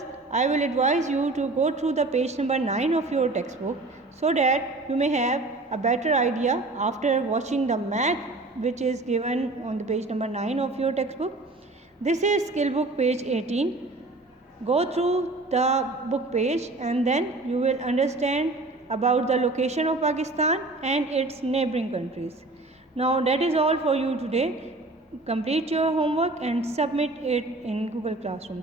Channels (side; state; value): left; quieter; 3.0 dB